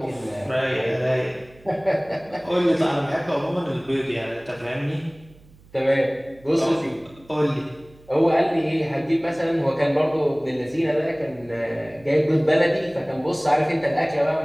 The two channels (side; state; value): right; noise; hum, 26 dB below the sound